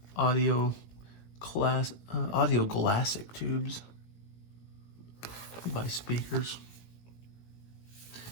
audio glassic tubes. You can buy speakers.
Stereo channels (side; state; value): right; late; 18 ms